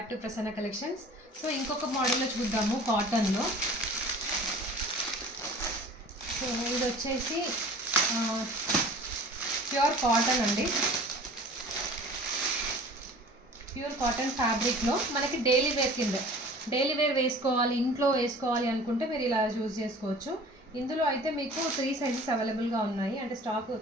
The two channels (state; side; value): normal; both; correlation 0.44